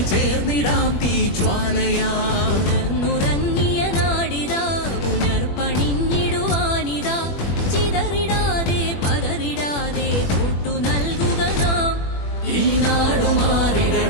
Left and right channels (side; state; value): right; late; 21 ms